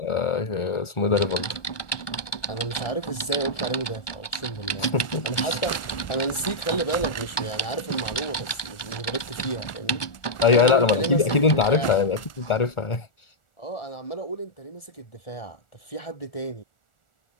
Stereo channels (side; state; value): right; late; 1.4 ms